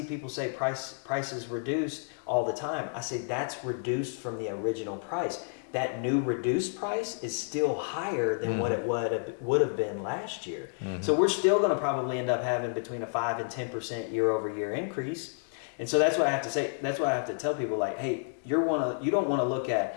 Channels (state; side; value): silent; right; digital silence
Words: people say prices reduced all the time. I say that's reduced from the original price. That new reduced price is still higher than what it would have been last year. So we're still going to probably end up having between a 5 and 10% year over year increase. And so that's what I have to say. That's why I have to tell people, like, hey, you don't want to look